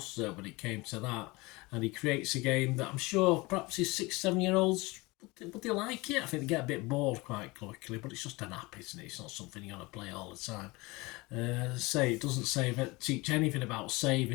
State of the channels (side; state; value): right; quieter; 23.6 dB